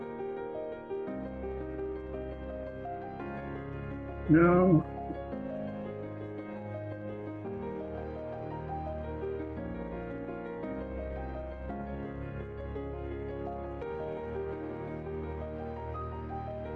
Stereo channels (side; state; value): both; identical; correlation 1.00